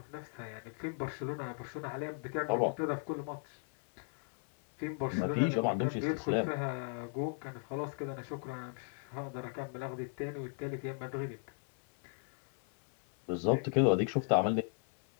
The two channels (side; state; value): right; silent; 53 dB below the other